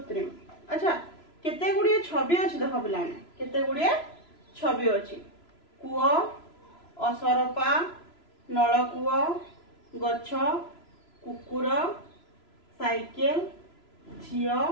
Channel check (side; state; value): right; late; 3.0 ms